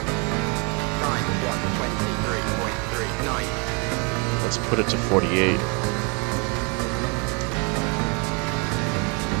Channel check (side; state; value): left; quieter; 33.3 dB